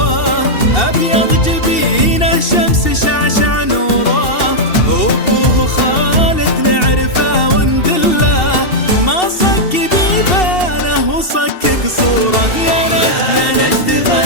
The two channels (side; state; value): right; late; 2.7 ms